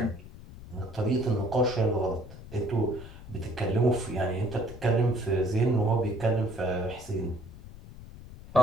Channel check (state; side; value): noise; left; rumble, 15 dB below the sound